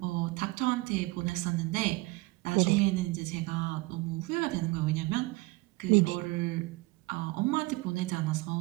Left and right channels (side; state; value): left; quieter; 22.6 dB